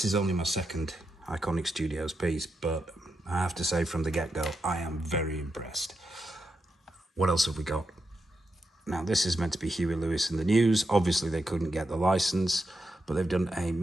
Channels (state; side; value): normal; both; correlation 0.85